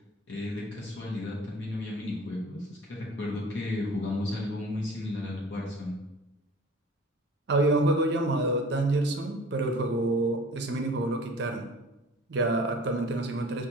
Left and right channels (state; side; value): normal; both; correlation 0.45